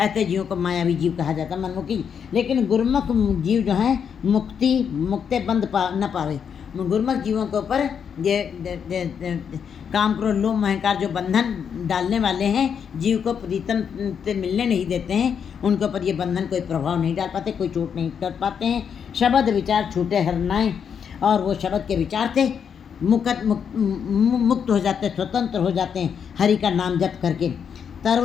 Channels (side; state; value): right; quieter; 7.4 dB